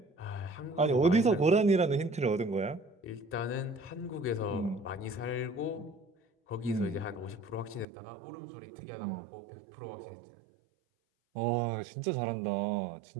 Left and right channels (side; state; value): left; drops out; at 7.9 s